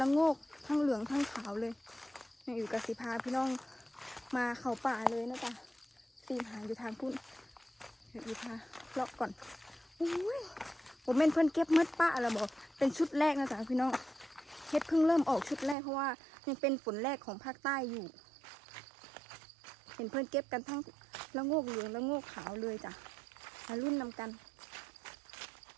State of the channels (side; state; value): left; drops out; at 15.8 s